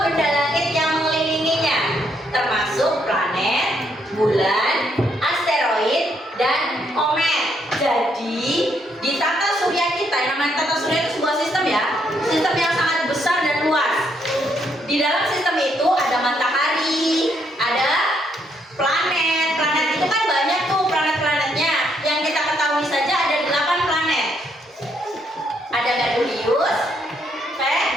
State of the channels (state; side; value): normal; both; correlation 0.73